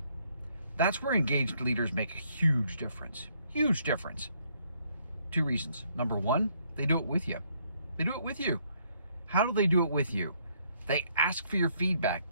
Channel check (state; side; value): inverted; both; correlation -0.69